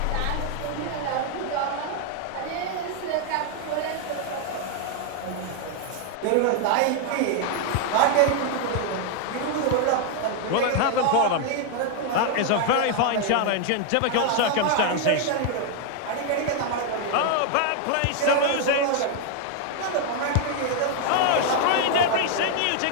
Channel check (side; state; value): both; different; correlation 0.00